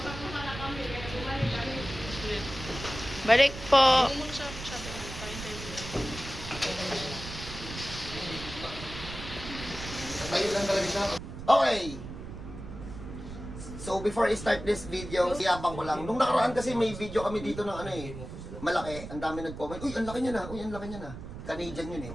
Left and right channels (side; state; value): right; noise; rumble, 11 dB below the sound